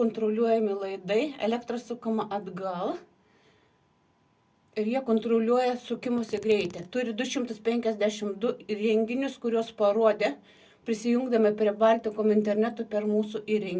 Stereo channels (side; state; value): both; identical; correlation 1.00